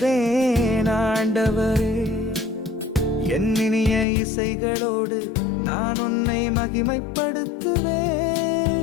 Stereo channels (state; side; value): drops out; right; at 4.0 s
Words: ஆண்டவரே. என் இனிய இசைகளோடு நான் உன்னை